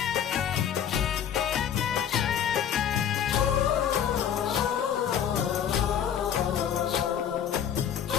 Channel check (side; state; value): right; quieter; 9.0 dB